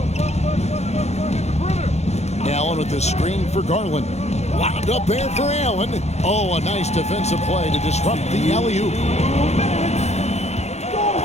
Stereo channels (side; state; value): right; late; 0.32 ms